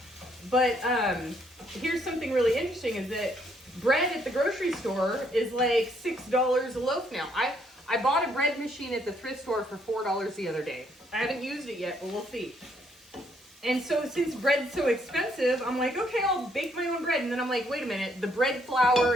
but here's something really interesting is that bread at the grocery store is like $6 a loaf now. I bought a bread machine at the thrift store for $4 the other day. I haven't used it yet, but we'll see. And so since bread's so expensive, I'm like, okay, I'll bake my own bread. And then I'm like, wait a minute, the bread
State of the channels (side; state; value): both; normal; correlation 0.70